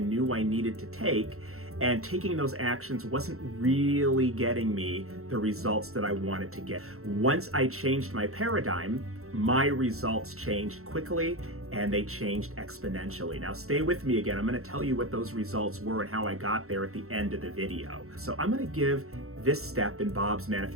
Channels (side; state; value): left; late; 0.63 ms